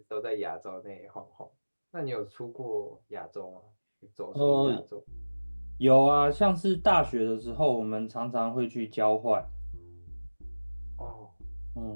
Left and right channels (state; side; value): inverted; both; correlation -1.00